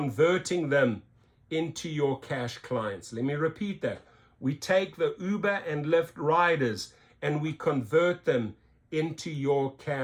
them into your cash clients. Let me repeat that. We take the Uber and Lyft riders and we convert them into your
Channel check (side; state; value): both; identical; correlation 1.00